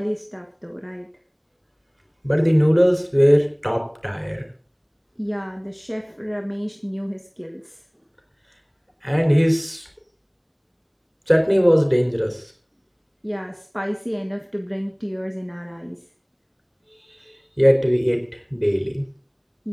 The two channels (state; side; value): identical; both; correlation 1.00